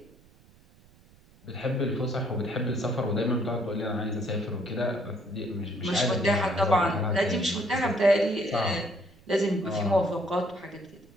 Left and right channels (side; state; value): right; noise; rumble, 28 dB below the sound